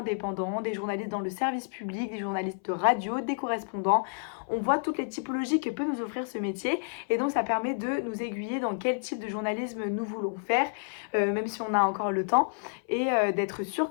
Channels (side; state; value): right; silent; 58 dB below the other